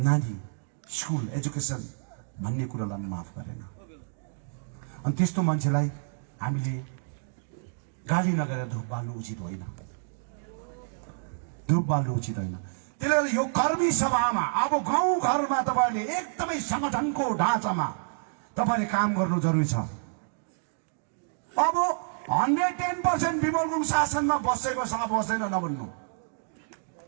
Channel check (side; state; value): left; silent; digital silence